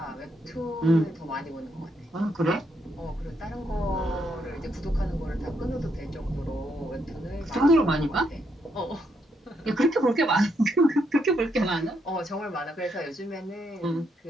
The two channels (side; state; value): both; normal; correlation 0.77